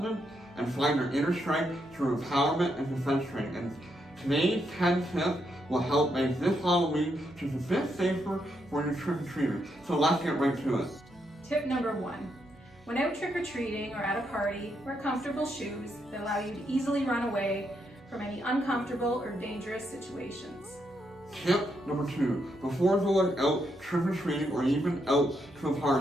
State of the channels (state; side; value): noise; right; hum, 28 dB below the sound